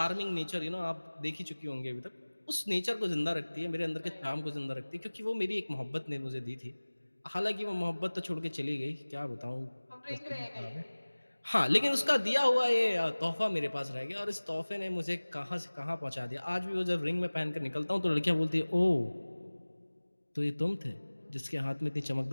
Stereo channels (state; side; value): inverted; both; correlation -1.00